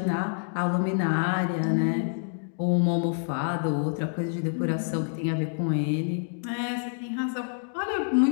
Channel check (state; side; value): silent; right; digital silence